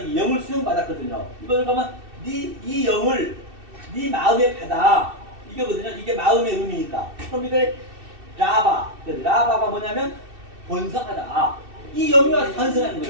영을 수용받았거든요. 이걸 그러면 이 영을 네 마음에 받아 이거거든요. 이게 마음의 의미니까. 그럼 이게 라바가 뭐냐면 번성하다. 이 영이 와서 번성하는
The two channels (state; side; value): late; left; 2.6 ms